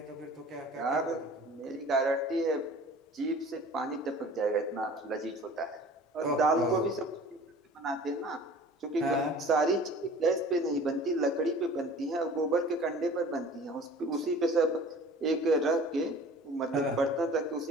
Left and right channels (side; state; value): both; normal; correlation 0.45